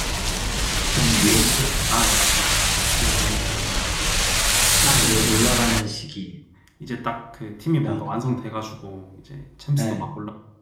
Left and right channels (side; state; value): both; identical; correlation 1.00